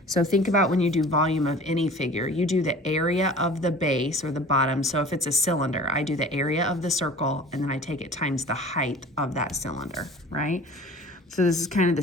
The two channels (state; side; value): normal; both; correlation 0.43